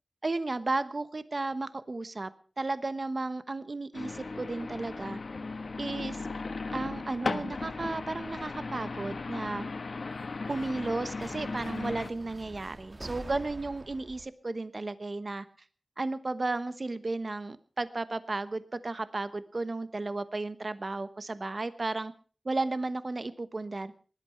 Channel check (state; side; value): normal; both; correlation 0.96